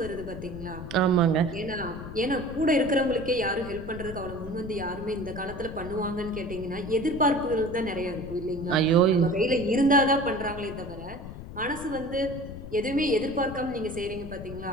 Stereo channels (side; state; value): left; noise; rumble, 11 dB below the sound